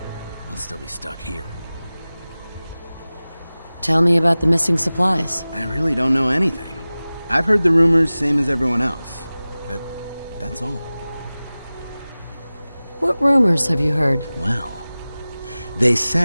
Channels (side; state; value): both; inverted; correlation -0.98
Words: I'll still be stuck here. Tell me about the missing supplies. I really don't know anything. I've heard the rumors, same as everyone else. But that's all. What rumors have you heard? Well, they